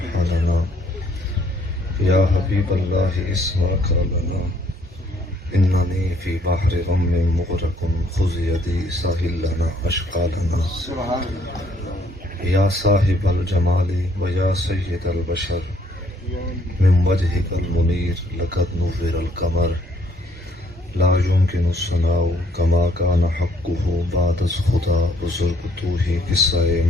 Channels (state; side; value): normal; both; correlation 0.66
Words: حالنا يا حبيب الله اسمع قولنا إنني في بحر غم مغرق خذ يدي ساحل لنا أشقالنا يا صاحب الجمال ويا سيد البشر من وجهك المنير لقد نور القمر لا يمكن الثناء كما كان حقه بعد خدا بزرگتوه قصہ